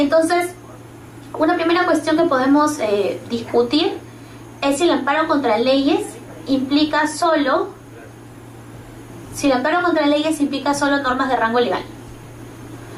una primera cuestión que podemos discutir es si el amparo contra leyes implica solo normas de rango legal.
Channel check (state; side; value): identical; both; correlation 1.00